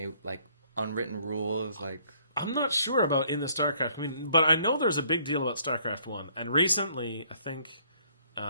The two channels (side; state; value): both; inverted; correlation -0.64